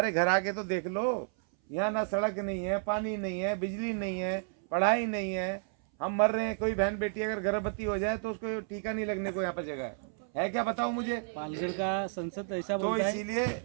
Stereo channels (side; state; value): left; silent; 57 dB below the other